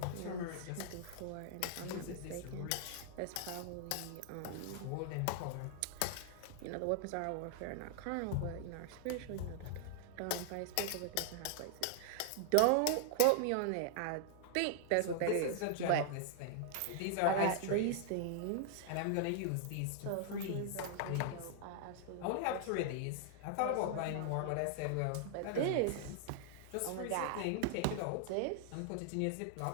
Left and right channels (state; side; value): different; both; correlation -0.01